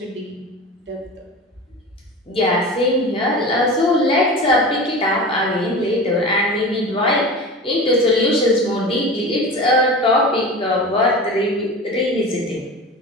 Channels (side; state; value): both; normal; correlation 0.32